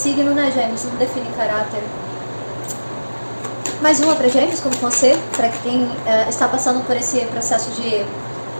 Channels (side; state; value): both; inverted; correlation -1.00